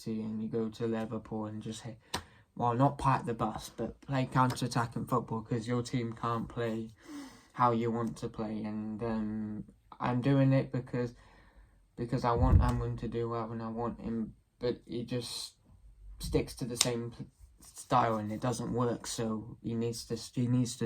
and you go to Liverpool and just hit. Well, not park the bus, but play counter-attacking football, because your team can't play how you want to play. And I'm doing it because I want Amrin to do well, and I want him, but he just sticks to the same style and it doesn't work. So he needs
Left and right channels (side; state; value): both; identical; correlation 1.00